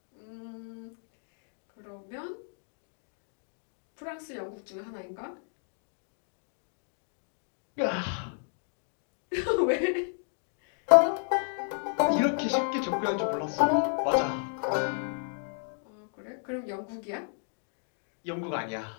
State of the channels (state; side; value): silent; right; 56 dB below the other